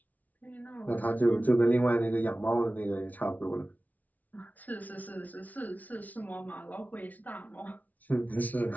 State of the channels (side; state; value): right; late; 0.075 ms